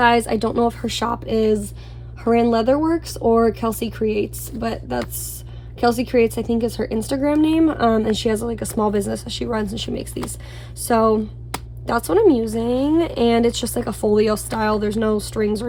I don't know if her shop is Haran Leatherworks or Kelsey Creates, but that's Kelsey Creates, I think, is her Instagram name. And she has a small business that she runs, and she makes these. So that's what I'm using, and it's just a folio style. There's no strings or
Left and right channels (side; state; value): both; identical; correlation 1.00